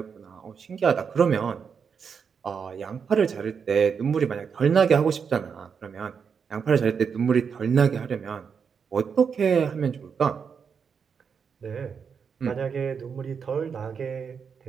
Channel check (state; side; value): quieter; left; 6.4 dB